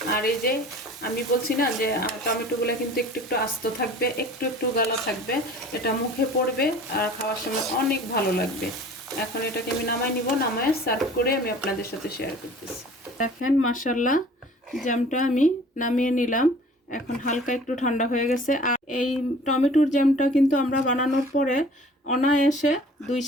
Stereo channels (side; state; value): both; normal; correlation 0.47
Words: আর এই যে আমি বলছি না যে টমেটোগুলো কিন্তু একটু একটু আস্ত থাকবে, একটু একটু গালা থাকবে, এটা মুখে পড়বে আর খাওয়ার সময় অনেক ভালো লাগবে। এখন এটাকে আমি নামাই নিব। নামায় সার্ভ করে আমি আপনাদের সাথে শেয়ার করতেছি। দেখেন মাশাআল্লাহ জ্যামটা আমি নামিয়ে নিলাম। এখন হালকা একটু ঠান্ডা হয়ে গেছে। আর এই টমেটোর জ্যামটা কিন্তু আমরা বানানোর পরে অনায়াসে 2